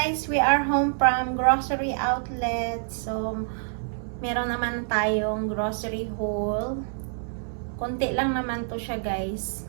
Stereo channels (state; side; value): silent; left; digital silence